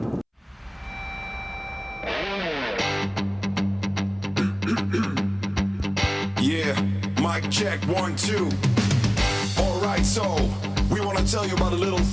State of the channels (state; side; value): identical; both; correlation 1.00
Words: Yeah, mic check 1, 2. Alright, so we want to tell you about a little